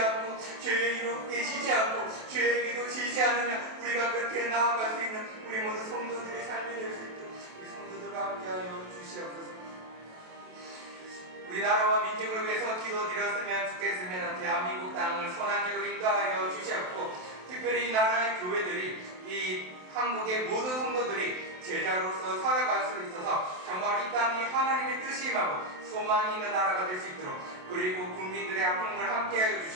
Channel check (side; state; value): left; late; 27 ms